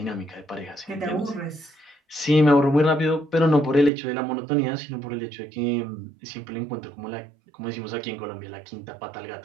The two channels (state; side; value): drops out; left; at 3.9 s